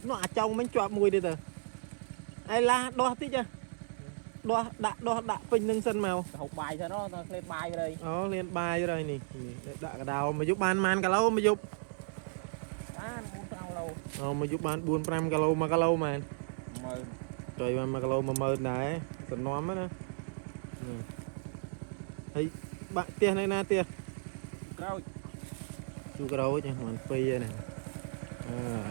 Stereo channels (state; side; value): silent; left; 55 dB below the other